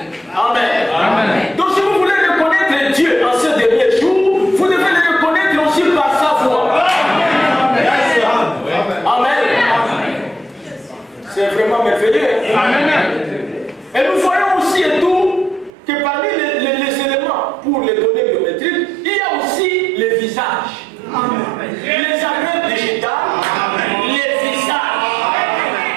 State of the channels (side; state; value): left; drops out; at 15.7 s